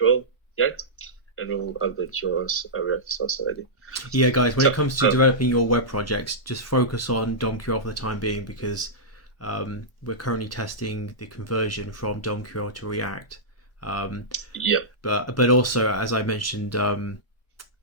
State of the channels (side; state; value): right; late; 1.0 ms